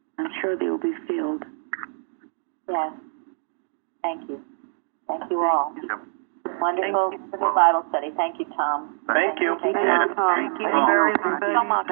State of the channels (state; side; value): silent; left; digital silence